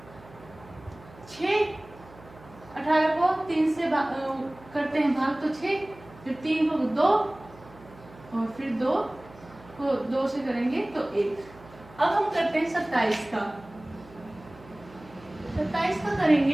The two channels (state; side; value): noise; right; hum, 22 dB below the sound